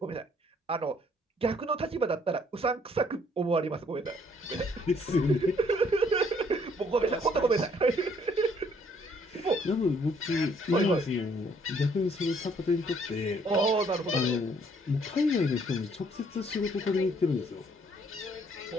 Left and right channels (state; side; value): normal; both; correlation 0.64